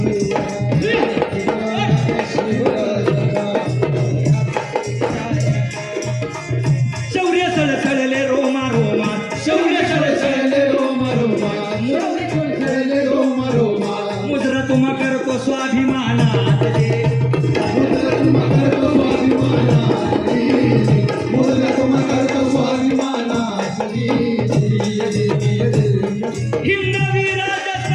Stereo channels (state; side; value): identical; both; correlation 1.00